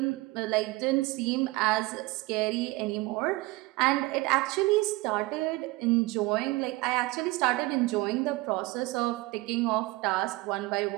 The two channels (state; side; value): quieter; left; 21.6 dB